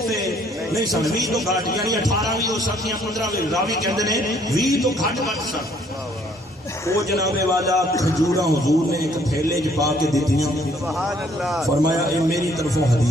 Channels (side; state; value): both; normal; correlation 0.63